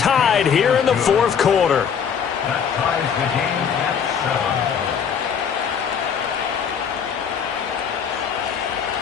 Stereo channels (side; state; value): right; quieter; 7.2 dB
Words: here in the fourth quarter. That ties the game at 7.